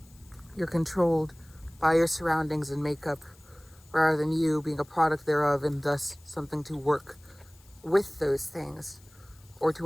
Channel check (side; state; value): left; noise; hiss, 28 dB below the sound